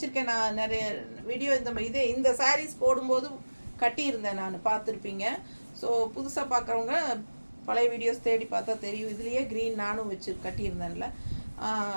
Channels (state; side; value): inverted; both; correlation -1.00